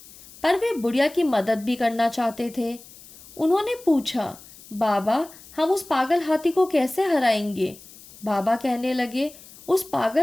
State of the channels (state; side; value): noise; left; hiss, 20 dB below the sound